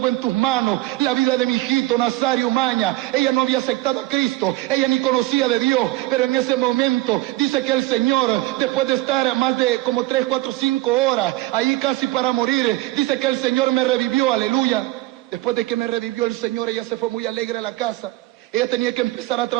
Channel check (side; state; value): left; quieter; 18.5 dB